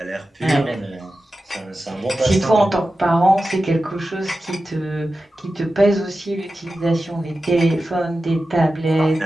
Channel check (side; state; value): both; normal; correlation 0.93